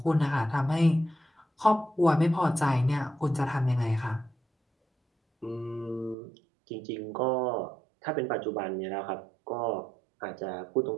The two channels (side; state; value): left; drops out; at 6.2 s